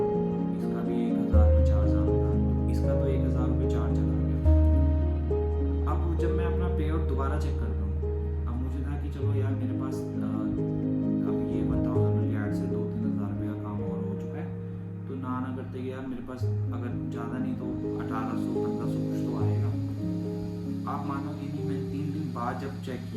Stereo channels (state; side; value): identical; both; correlation 1.00